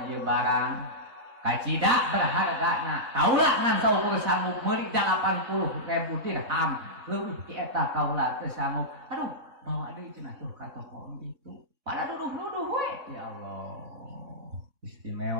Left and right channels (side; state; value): left; late; 3.6 ms